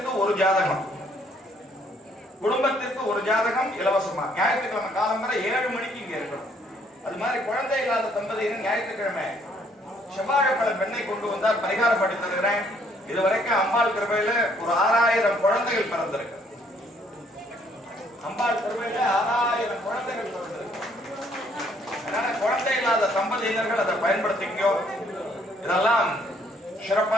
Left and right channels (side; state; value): both; normal; correlation 0.66